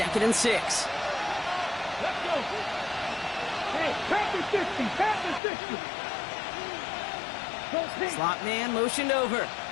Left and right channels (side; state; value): right; drops out; at 5.4 s